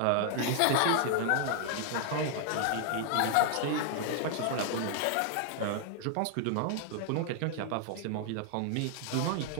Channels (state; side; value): different; both; correlation 0.00